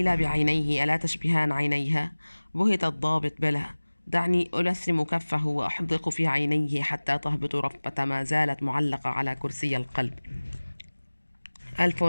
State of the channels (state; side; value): inverted; both; correlation -1.00